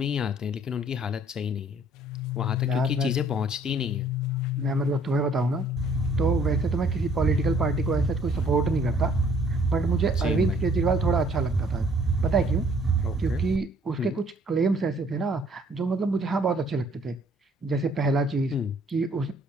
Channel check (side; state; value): both; normal; correlation 0.59